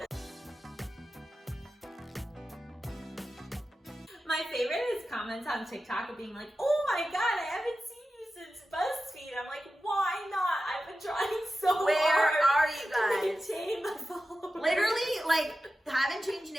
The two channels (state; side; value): normal; both; correlation 0.93